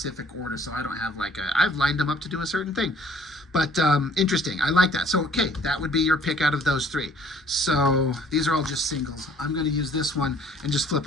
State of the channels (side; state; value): both; normal; correlation 0.57